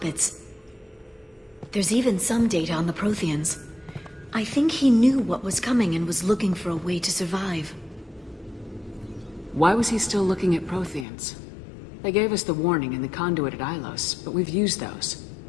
There's even some data on the Protheans. I think he knew what was coming and was looking for a way to survive. Why was he still looking at Protheans? They gave us the warning in the conduit at Ilos, but we've used those.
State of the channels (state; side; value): drops out; right; at 11.1 s